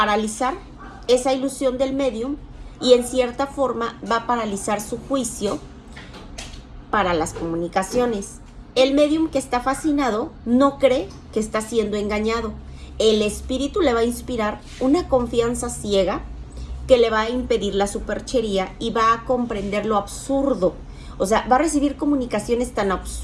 esa ilusión del médium y en cierta forma va a paralizar su juicio para las comunicaciones. El médium que está fascinado no cree que está siendo engañado. El espíritu le va a inspirar una confianza ciega que le va a impedir la superchería y va a comprender lo absurdo. O sea, va a recibir comunicaciones tan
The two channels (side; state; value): both; identical; correlation 1.00